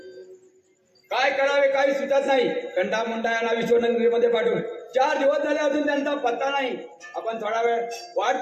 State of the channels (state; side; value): identical; both; correlation 1.00